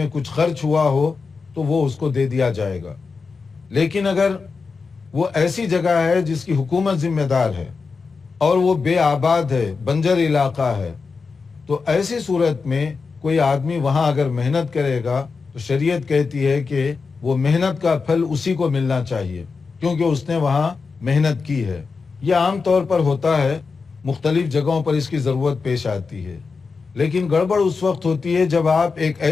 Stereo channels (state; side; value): quieter; right; 4.7 dB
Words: کچھ خرچ ہوا ہو تو وہ اس کو دے دیا جائے گا. لیکن اگر وہ ایسی جگہ ہے جس کی حکومت ذمہ دار ہے اور وہ بے آباد ہے، بنجر علاقہ ہے، تو ایسی صورت میں کوئی آدمی وہاں اگر محنت کرے گا تو شریعت کہتی ہے کہ وہ محنت کا پھل اسی کو ملنا چاہیے، کیونکہ اس نے وہاں محنت کی ہے. یہ عام طور پر ہوتا ہے، مختلف جگہوں پر اس کی ضرورت پیش آتی ہے. لیکن گڑبڑ اس وقت ہوتی ہے جب آپ ایک